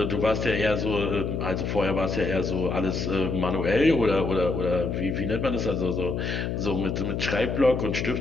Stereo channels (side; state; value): left; noise; hum, 2 dB below the sound